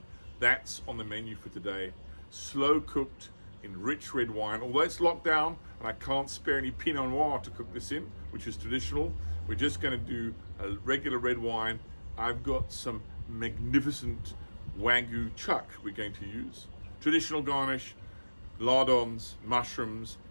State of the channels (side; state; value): both; inverted; correlation -1.00